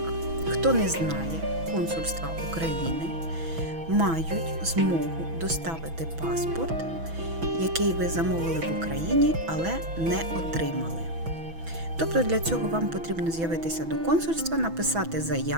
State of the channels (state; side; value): late; left; 6.1 ms